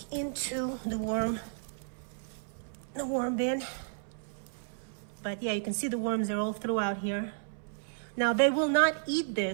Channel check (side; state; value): left; silent; 56 dB below the other